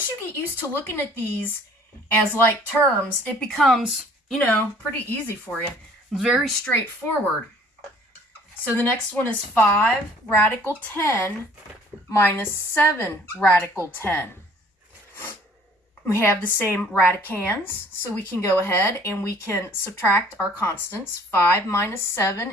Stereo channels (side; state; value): both; normal; correlation 0.55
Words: you get used to looking at these as like terms, it becomes, pretty easy for you. Very straightforward. So the next one is 5 radical 10 minus 7 radical 10. We have the same radicands, so we can go ahead and we can subtract our constants. 5 minus 7